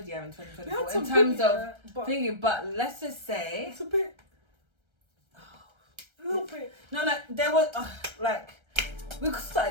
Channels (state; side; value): late; left; 1.3 ms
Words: year in 2024 in terms of thinking. But let's just say it's a bit. A little bit. No, there was we